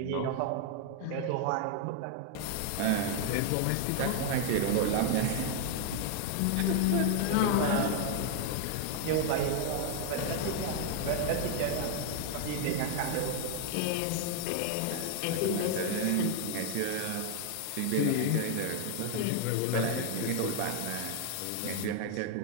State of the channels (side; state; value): both; different; correlation 0.00